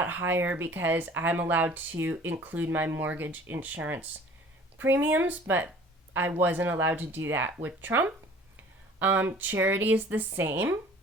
higher because I'm allowed to include my mortgage insurance premiums, but I wasn't allowed to do that with Trump. Charity is the same.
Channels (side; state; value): both; normal; correlation 0.49